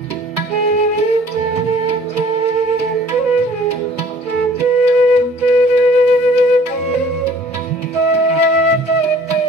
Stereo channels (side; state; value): both; normal; correlation 0.53